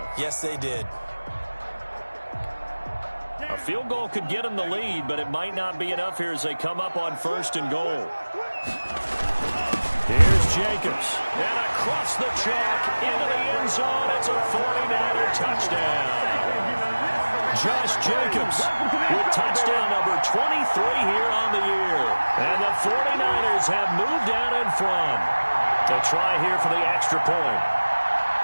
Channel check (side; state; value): both; inverted; correlation -1.00